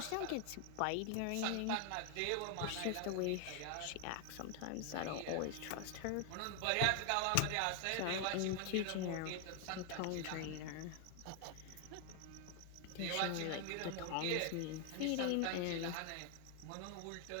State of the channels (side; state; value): both; different; correlation 0.00